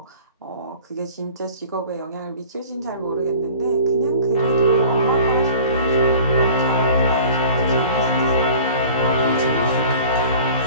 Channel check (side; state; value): both; inverted; correlation -0.44